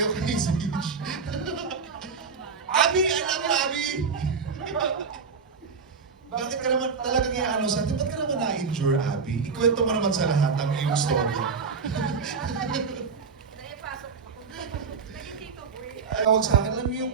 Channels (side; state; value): left; quieter; 5.3 dB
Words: kay Zeech. Abi! Alam mo, Abi! Bakit ka naman talagang iaano sa atin? Ba't ka naman na-endure, Abby? Ikwento mo naman sa lahat ang iyong story. Tawag sa akin, alam mo